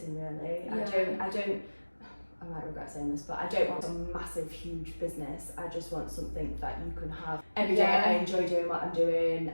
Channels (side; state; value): both; inverted; correlation -1.00